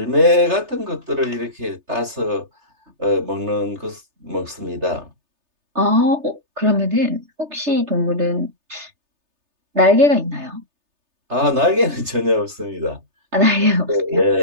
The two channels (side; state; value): left; late; 3.3 ms